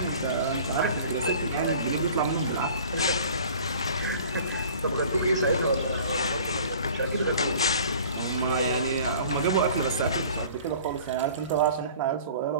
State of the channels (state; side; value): inverted; both; correlation -0.47